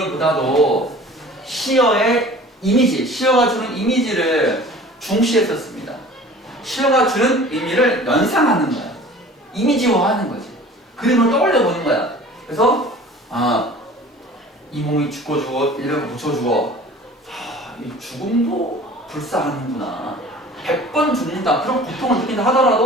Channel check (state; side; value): normal; both; correlation 0.45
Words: 시어의 이미지, 시어가 주는 이미지를 중시했었습니다. 시어가 주는 의미를 연상하는 거야. 이미지화하는 거지. 그림을 떠올려 보는 거야. 그래서 이 몸이 죽고 이렇게 붙여주고 이 죽음도 불사하는구나. 100번 죽는다. 그런 고통을 느낀다